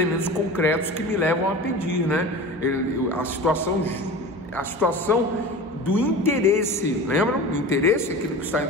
concretos que me levam a pedir, né? A situação do interesse, lembram? O interesse é aquilo que está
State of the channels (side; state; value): both; normal; correlation 0.34